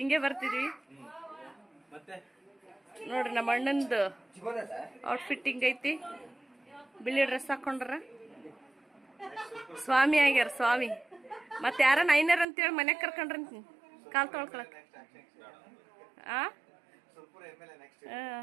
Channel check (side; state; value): left; drops out; at 12.5 s